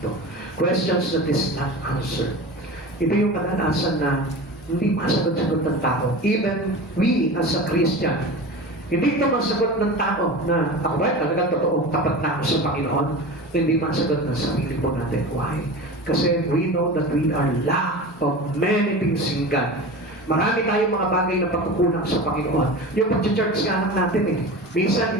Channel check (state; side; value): normal; both; correlation 0.31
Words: Questions that is not answered. Ito yung kadalasan na hindi masagot-sagot ng tao. Even we as a Christian, hindi ito masagot ng tao na ako ba talagang totoo, tapat na ako sa Panginoon. Hindi masagot ng sarili po natin. Why? Kasi we know that we are lack of many things in God. Marami tayong mga bagay na pagkukulang sa Panginoon. Yung pag-church nga lang natin minsan